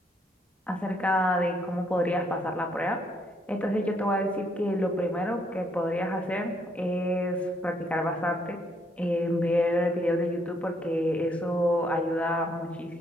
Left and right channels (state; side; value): normal; both; correlation 0.71